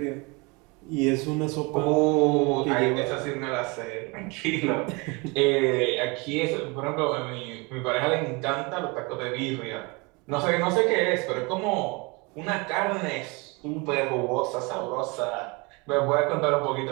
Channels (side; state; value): left; quieter; 27.9 dB